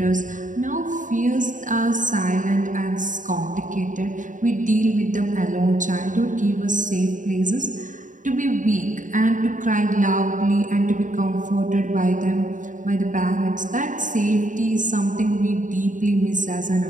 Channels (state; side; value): late; left; 0.37 ms